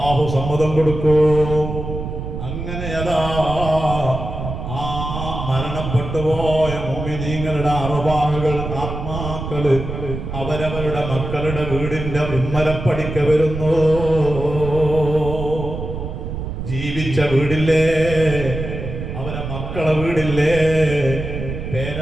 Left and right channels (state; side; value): noise; right; rumble, 6 dB below the sound